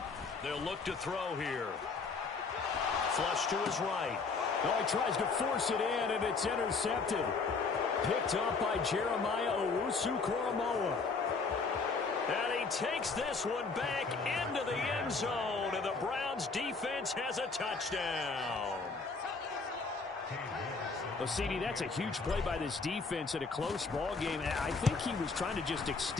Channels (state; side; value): quieter; right; 4.5 dB